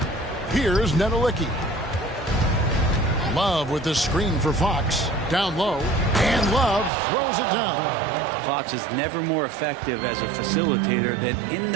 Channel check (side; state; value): left; drops out; at 6.9 s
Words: Here's Nedelicki. Love with the screen for Fox. Down low. And Love throws it down. Fox is never more effective as a facilitator than in